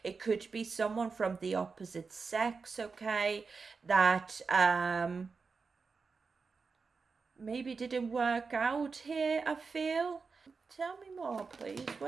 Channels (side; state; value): left; quieter; 4.8 dB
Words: It could be someone from the opposite sex, okay, that maybe didn't work out here, I feel. Tell me more, please.